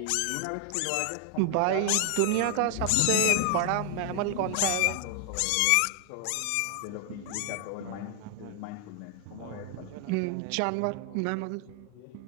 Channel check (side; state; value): both; different; correlation 0.00